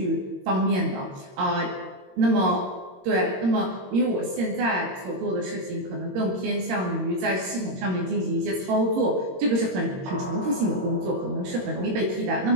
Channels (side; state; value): left; late; 22 ms